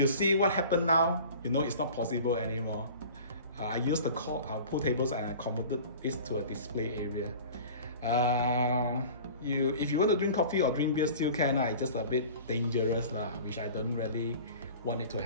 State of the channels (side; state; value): both; inverted; correlation -0.41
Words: see what happened now, you know it's not possible anymore. I used the pool tables and I converted this to a display area. If you want to drink coffee or drink beer, still can. It's just a bit dangerous, which I don't really want it to